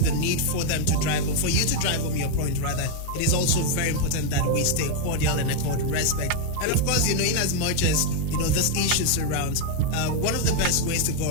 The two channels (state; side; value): different; both; correlation 0.01